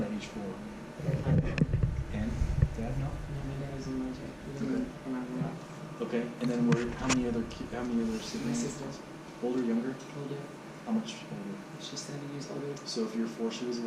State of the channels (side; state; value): both; identical; correlation 1.00